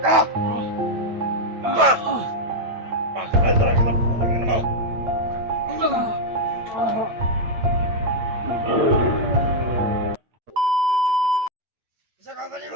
ka! Bakit talaga na putang ina mo? Isa ka ba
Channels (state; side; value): late; left; 8.9 ms